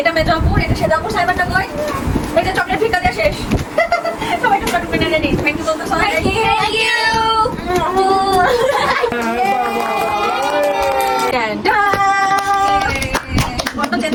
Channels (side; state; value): both; identical; correlation 1.00